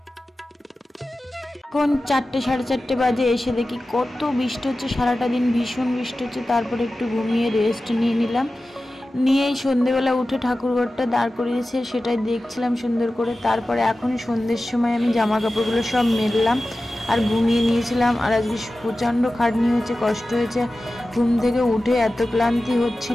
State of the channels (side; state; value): both; normal; correlation 0.95